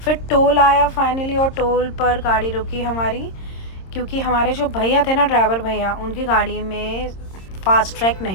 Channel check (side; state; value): right; late; 26 ms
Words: टोल आया फाइनली, और टोल पर गाड़ी रुकी हमारी, क्योंकि हमारे जो भैया थे ना, ड्राइवर भैया, उनकी गाड़ी में फास्ट ट्रैक